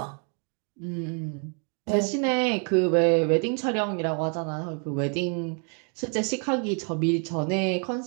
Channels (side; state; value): left; quieter; 39.6 dB